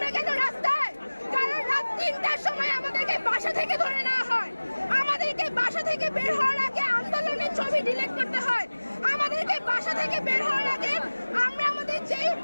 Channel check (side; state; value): both; inverted; correlation -1.00